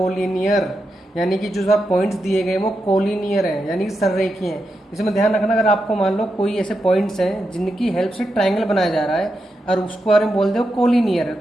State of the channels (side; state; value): both; normal; correlation 0.87